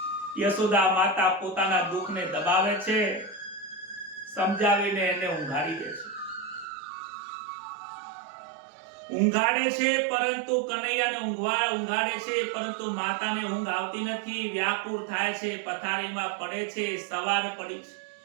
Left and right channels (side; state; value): left; drops out; at 6.7 s